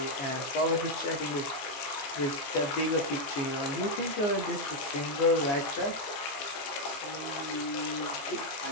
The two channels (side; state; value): right; late; 15 ms